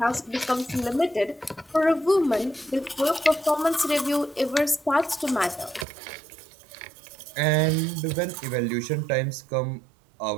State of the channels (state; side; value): drops out; left; at 5.9 s